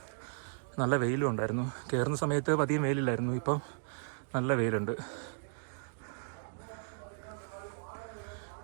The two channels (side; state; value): left; silent; digital silence